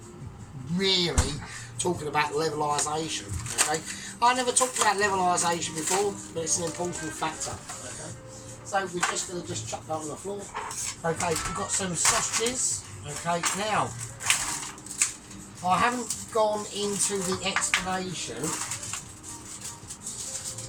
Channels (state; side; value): identical; both; correlation 1.00